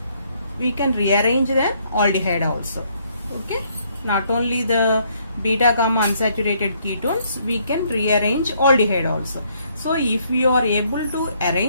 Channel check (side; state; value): both; inverted; correlation -0.68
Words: rearrange the aldehyde also. Okay, not only the beta gamma unsaturated ketones, we can rearrange aldehyde also. So if we are able to